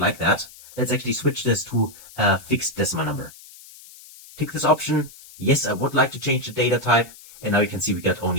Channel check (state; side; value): noise; left; hiss, 20 dB below the sound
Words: like that. Let's actually switch this to a fixed decimal number. Tick this option. Yes, I would like to change the data type. And now you can see we got